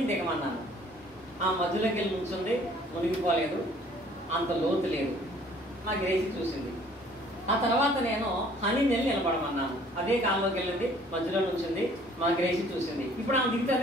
దిగమన్నాను. ఆ మధ్యలోకి వెళ్ళి నుంచుంది, మునిగిపోలేదు, అంత లోతు లేదు. మా గ్రేసి చూసింది. ఆ తర్వాత నేను హనీ నెల్లి నిలబడమన్నాను. అదే కాలంలోకి వెళ్ళింది, మధ్యలో నుంచింది, మా గ్రేసి చూసింది. ఇప్పుడు ఆమె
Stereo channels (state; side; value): normal; both; correlation 0.56